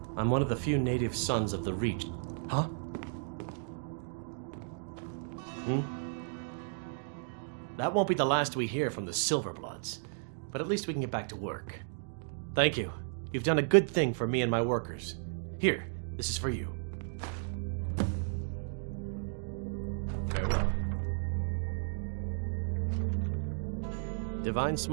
I'm one of the few native sons of the Reach. Huh? That won't be the last we hear from the Silverbloods, but at least we can get back to work. Thank you. You've done a good thing for me and my workers. Here, this is for you. Farewell. Divine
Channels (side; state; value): left; silent; digital silence